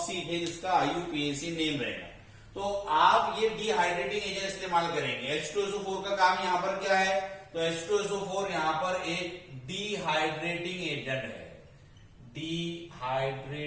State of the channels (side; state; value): both; identical; correlation 1.00